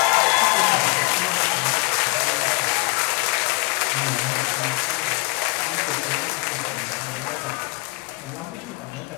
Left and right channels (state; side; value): quieter; right; 30.8 dB